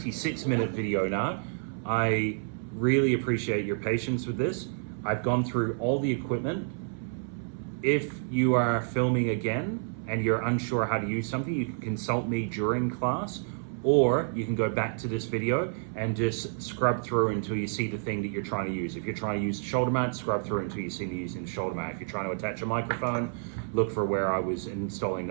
video now. I really appreciate your patience with this. I've gone through all the equipment. If you are filming again and you're unsure how to use something, you can consult me during class, or you can go back to this video and just scrub through until you see the thing that you're trying to use. If you're trying to use the shoulder mount, scrub through until you see me using the shoulder mount. If you're trying to attach a microphone, look for where I was installing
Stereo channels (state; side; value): silent; left; 58 dB below the other